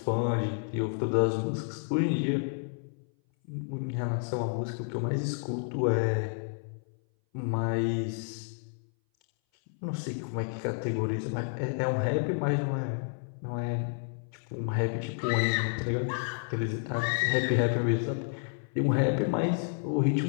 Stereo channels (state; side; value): silent; right; 58 dB below the other